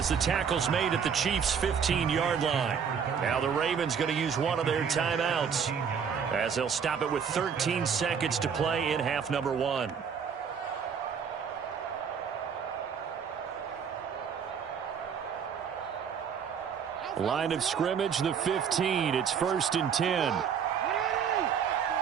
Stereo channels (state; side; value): quieter; left; 7.0 dB